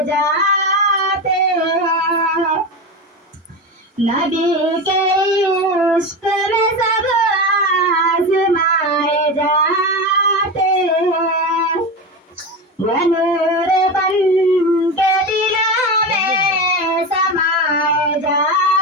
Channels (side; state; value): both; normal; correlation 0.20